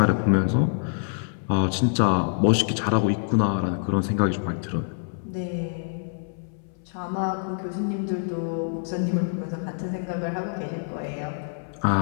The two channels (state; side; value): silent; right; 61 dB below the other